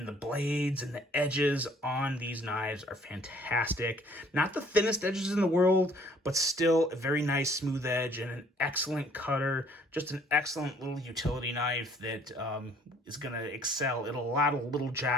the blades and the edges on these knives are fantastic. Not the thinnest edges in the world, but still a very nice smooth edge and an excellent cutter. Just an excellent little utility knife that is going to excel at a lot of little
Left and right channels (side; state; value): both; normal; correlation 0.59